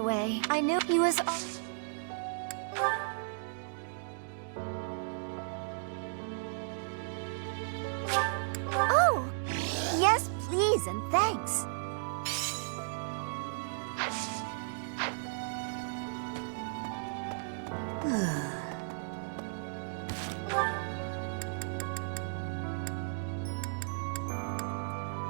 I knew he was. Oh! Yes, please, and thanks.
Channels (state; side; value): silent; left; digital silence